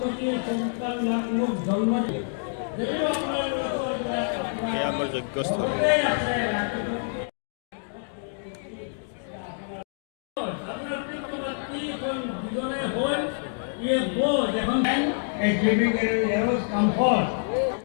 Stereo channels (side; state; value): right; silent; digital silence